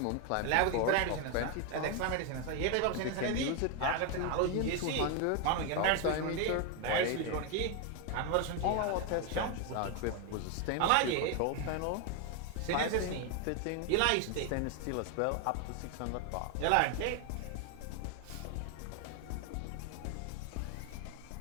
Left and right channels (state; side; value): different; both; correlation 0.01